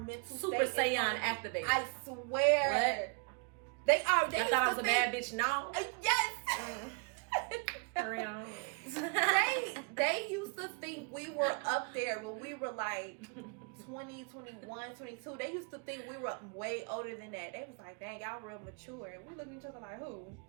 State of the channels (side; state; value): left; quieter; 35.9 dB